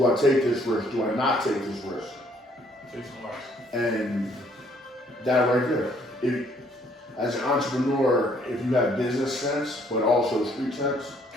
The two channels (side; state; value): both; normal; correlation 0.65